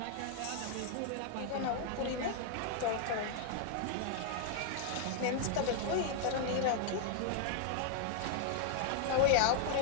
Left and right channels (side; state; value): both; different; correlation 0.00